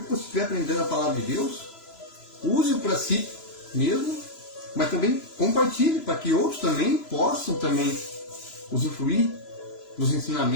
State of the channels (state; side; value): late; right; 3.0 ms